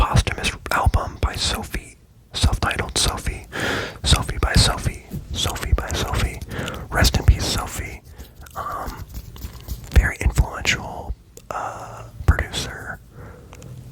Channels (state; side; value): identical; both; correlation 1.00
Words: album by Sophie, self-titled Sophie. Sophie by Sophie. Sophie by Sophie. Rest in peace, Sophie. Very influential producer.